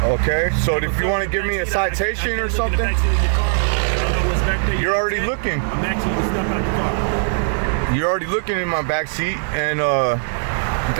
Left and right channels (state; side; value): silent; left; digital silence